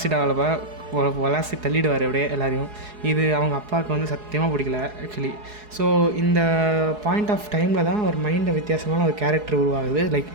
தள்ளிடுவார் அப்படியே எல்லாரையும். இது அவங்க அப்பாவுக்கு வந்து சத்தியமாக பிடிக்கல ஆக்சுவலி. ஸோ இந்த பாயிண்ட் ஆஃப் டைமில் தான் அவர் மைண்டில் வித்தியாசமான ஒரு கேரக்டர் உருவாகுது. லைக்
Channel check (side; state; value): left; late; 4.7 ms